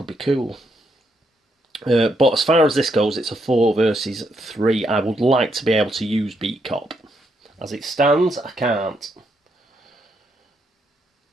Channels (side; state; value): both; normal; correlation 0.77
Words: be cool. But as far as this goes, it's a 4 versus 3. I would like to be able to use Beat Cop. As it stands, I can't.